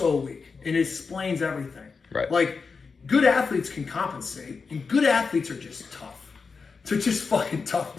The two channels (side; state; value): right; quieter; 4.9 dB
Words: weak, and it explains everything. Right. Like, good athletes can compensate, and good athletes are just tough. They're just fucking tough